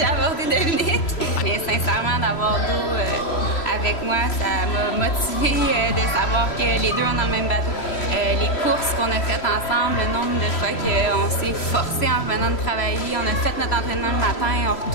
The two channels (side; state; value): right; late; 3.0 ms